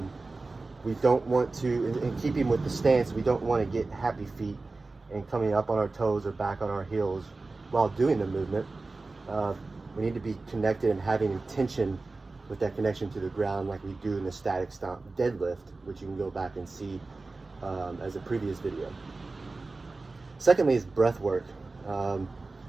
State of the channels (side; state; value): left; quieter; 3.5 dB